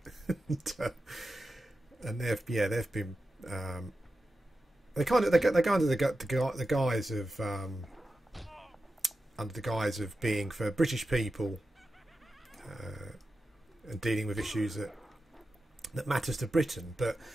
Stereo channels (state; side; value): normal; both; correlation 0.91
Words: And they've been they go under the guise of under the guise of being for British people and dealing with issues that matters to Britain. But